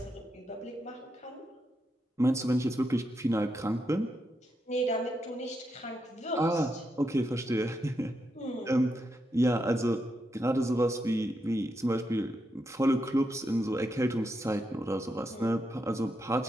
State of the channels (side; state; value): both; normal; correlation 0.83